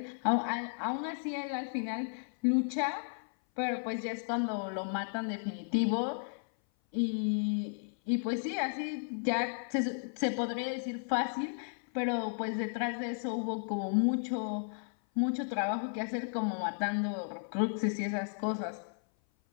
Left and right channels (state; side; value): silent; right; 55 dB below the other